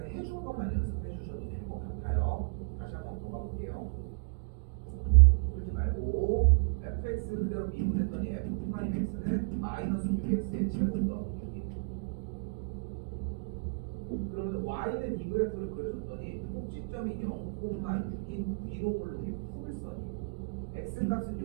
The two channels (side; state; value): left; quieter; 35.5 dB